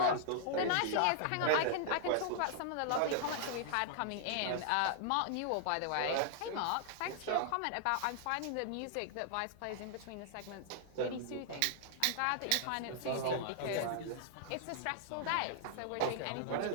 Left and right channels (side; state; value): both; different; correlation -0.01